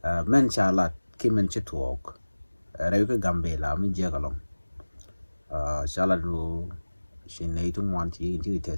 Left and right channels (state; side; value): inverted; both; correlation -1.00